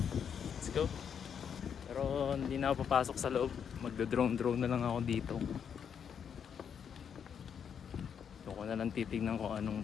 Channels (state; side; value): quieter; right; 7.6 dB